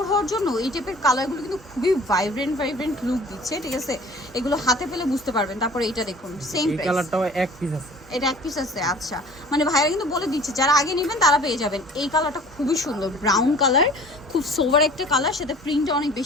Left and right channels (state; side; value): normal; both; correlation 0.47